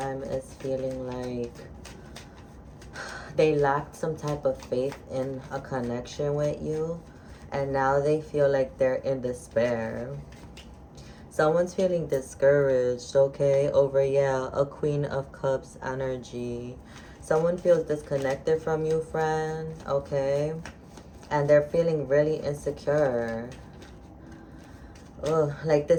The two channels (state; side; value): identical; both; correlation 1.00